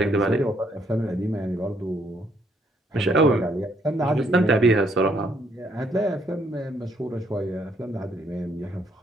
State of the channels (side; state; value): both; normal; correlation 0.70